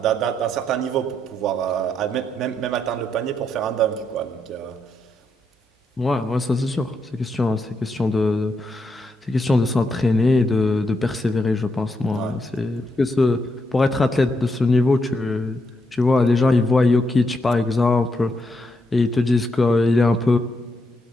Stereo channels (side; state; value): both; normal; correlation 0.80